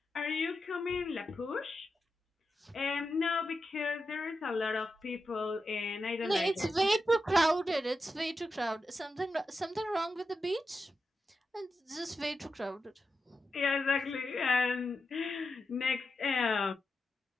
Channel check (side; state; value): both; normal; correlation 0.89